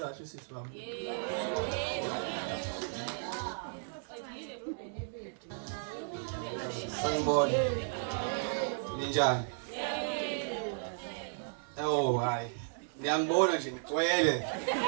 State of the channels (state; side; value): silent; left; digital silence